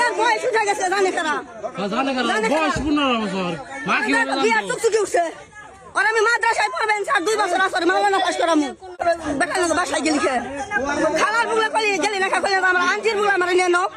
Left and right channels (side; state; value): both; identical; correlation 1.00